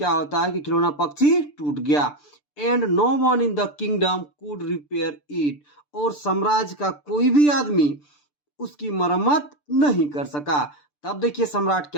होता है कि खिलौना पक्षी टूट गया। And no one in the kingdom could repair it. और साम्राज्य का कोई भी आदमी उसकी मरम्मत नहीं कर सका। तब देखिए सम्राट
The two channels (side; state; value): right; late; 6.8 ms